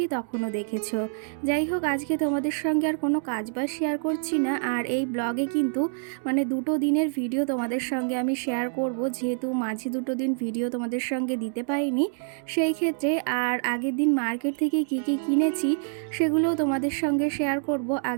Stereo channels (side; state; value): left; silent; digital silence